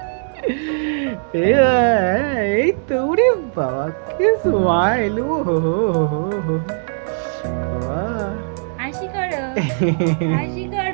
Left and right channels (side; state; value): left; silent; digital silence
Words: এই তো রে বাবা, কি স্মাইল! ও হো হো হো হো। বাবা হাসি করো, হাসি